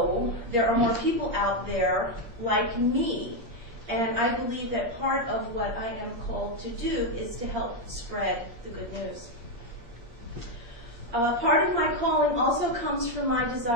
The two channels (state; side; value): late; left; 8.5 ms